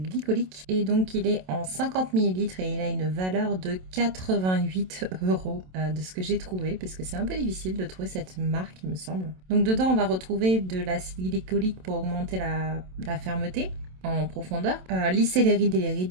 glycolique, et donc il est en 50 ml et il a une valeur de 88 € de ce que j'ai trouvé, parce que c'est un peu difficile de trouver cette marque il me semble. Donc dedans on va retrouver de l'acide glycolique pour augmenter la fermeté en profondeur, lisser les rides et les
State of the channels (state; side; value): late; left; 27 ms